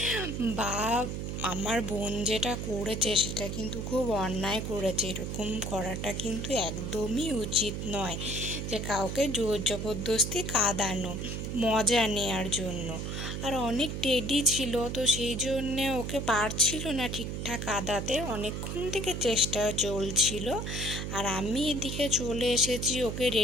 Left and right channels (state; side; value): noise; right; hum, 4 dB below the sound